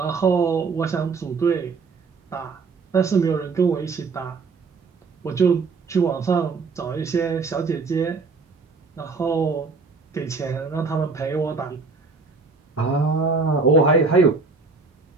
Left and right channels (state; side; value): quieter; left; 4.4 dB